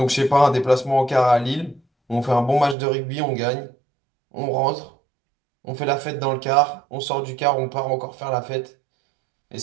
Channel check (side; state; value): left; drops out; at 2.8 s